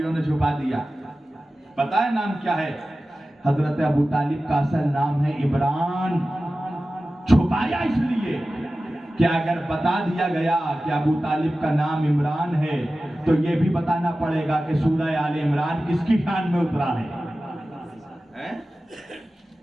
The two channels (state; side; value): normal; both; correlation 0.95